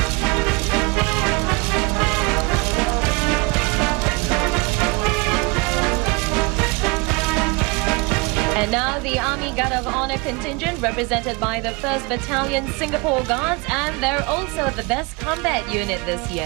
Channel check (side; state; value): left; quieter; 28.0 dB